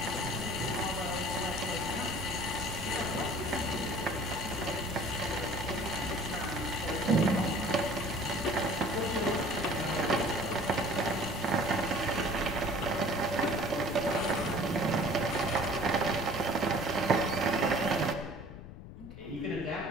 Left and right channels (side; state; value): left; noise; rumble, 13 dB below the sound